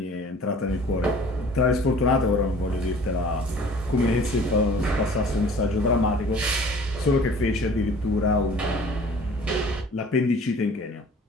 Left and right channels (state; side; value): normal; both; correlation 0.49